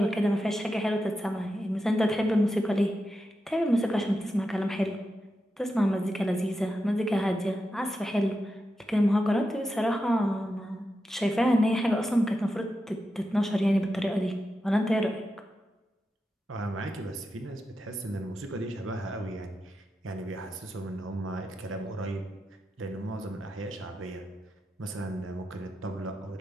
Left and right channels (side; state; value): both; normal; correlation 0.89